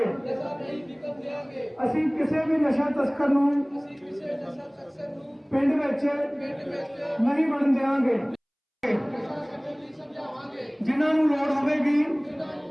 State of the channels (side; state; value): both; identical; correlation 1.00